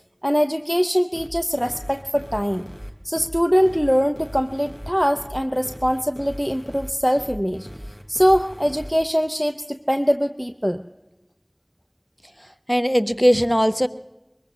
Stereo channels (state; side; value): identical; both; correlation 1.00